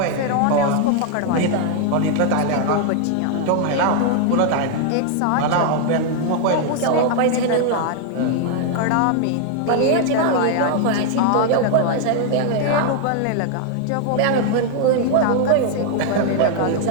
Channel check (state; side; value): different; both; correlation 0.00